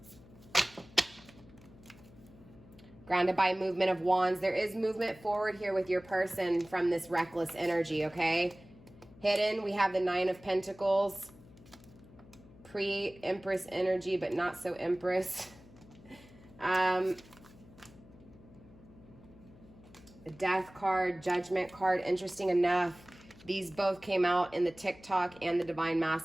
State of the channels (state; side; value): noise; left; hum, 23 dB below the sound